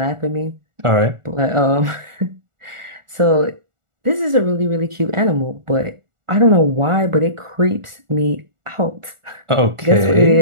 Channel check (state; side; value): late; left; 1.4 ms